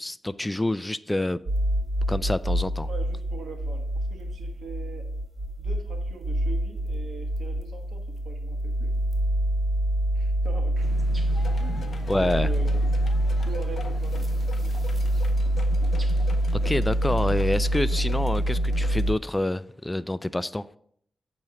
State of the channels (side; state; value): both; normal; correlation 0.82